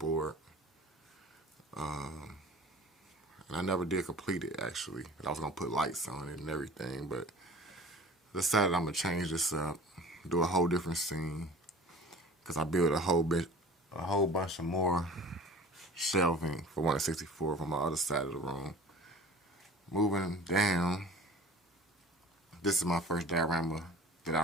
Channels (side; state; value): both; normal; correlation 0.43